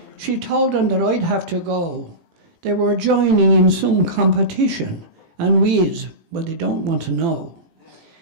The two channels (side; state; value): left; late; 18 ms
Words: She told them that I'd have to go. They were joining in some competition, and weeds, well, they don't want to know.